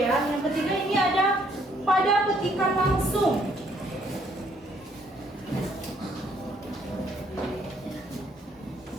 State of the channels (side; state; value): both; normal; correlation 0.67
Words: Yang ketiga ini ada pada petikan langsung.